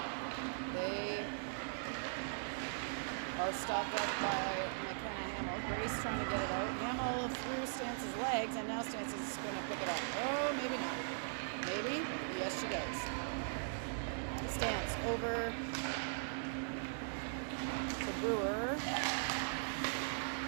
They are stopped up by McKenna Hamill. Grace trying to get it out. Hamill through Stance's legs, and now Stance is going to pick it up. Oh, maybe not. Maybe? Yes, she does. Stance over to Brewer.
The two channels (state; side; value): silent; left; digital silence